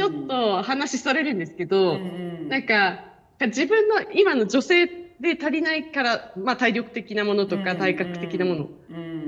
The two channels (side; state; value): both; identical; correlation 1.00